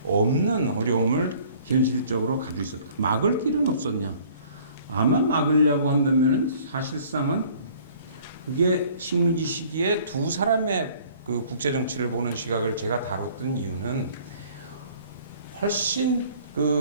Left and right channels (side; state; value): both; inverted; correlation -0.54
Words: 없는 어려움을 현실적으로 가지고 있었다. 막을 길은 없었냐? 아마 막으려고 한다면은 사실상은 그게 식민지 시기에 두 사람의 그 국제 정치를 보는 시각을 제가 다뤘던 이유는 훨씬